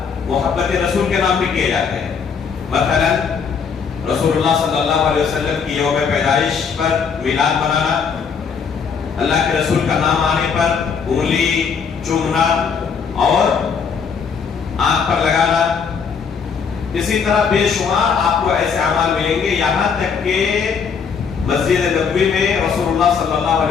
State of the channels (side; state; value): right; quieter; 6.2 dB